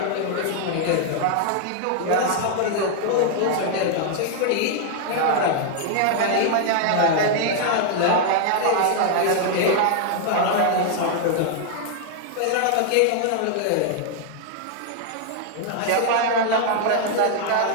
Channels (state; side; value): different; both; correlation 0.00